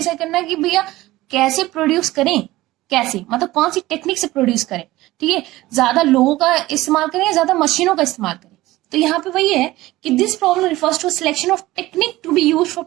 करना है कि भैया कैसे प्रोड्यूस करें, कैसे मतलब कौन सी टेक्निक से प्रोड्यूस करें, ठीक है। ज्यादा लोगों का इस्तेमाल करें या ज्यादा मशीनों का इस्तेमाल करें। तो यहाँ पे वही है कि this problem refers to selection of technique to be use for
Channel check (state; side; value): quieter; left; 17.7 dB